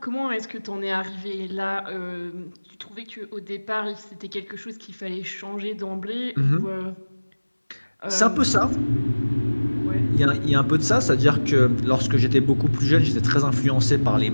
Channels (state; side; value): inverted; both; correlation -1.00